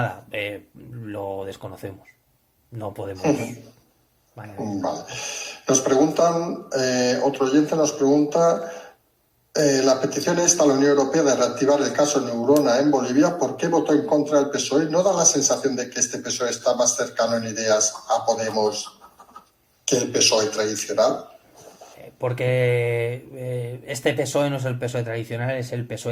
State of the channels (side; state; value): both; identical; correlation 1.00